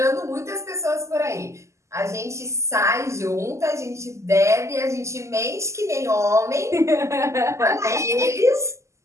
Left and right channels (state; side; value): late; left; 0.14 ms